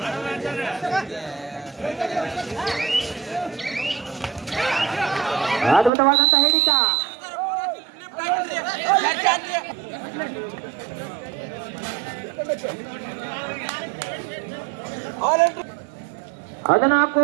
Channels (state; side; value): drops out; left; at 5.9 s